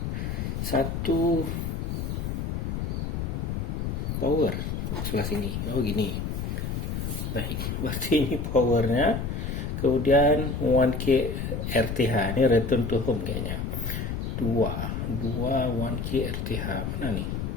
Satu power sebelah sini. Oh, gini. Baik, berarti ini powernya. Kemudian 1K RTH, ini return to home kayaknya. 2 1K RTH mana nih?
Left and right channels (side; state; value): left; noise; rumble, 2 dB below the sound